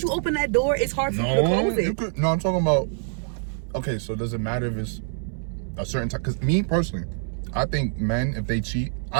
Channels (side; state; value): left; silent; 62 dB below the other